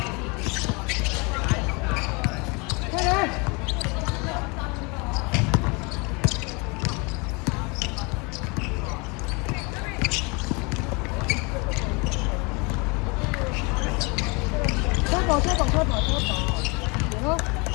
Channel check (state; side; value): quieter; right; 29.5 dB